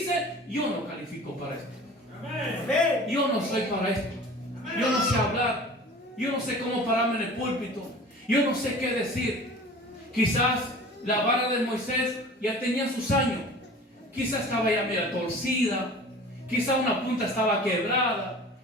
yo no califico para esto. Yo no soy para esto. Yo no sé hablar. Yo no sé cómo pararme en el púlpito. Yo no sé qué decir. Quizás la vara de Moisés ya tenía sus años. Quizás estaba ya medio torcida. Quizás una punta estaba quebrada.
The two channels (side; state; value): both; normal; correlation 0.41